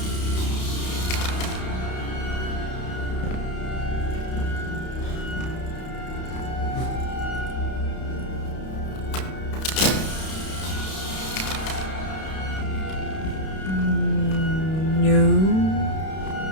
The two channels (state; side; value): late; right; 32 ms